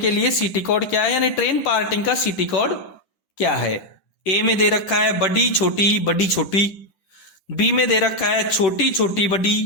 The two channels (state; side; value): late; right; 10 ms